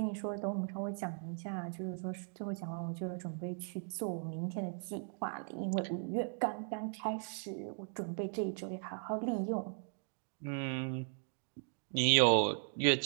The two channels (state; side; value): silent; left; 53 dB below the other